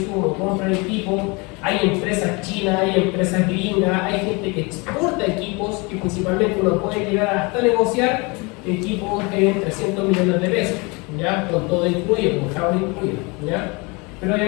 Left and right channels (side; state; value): right; quieter; 28.1 dB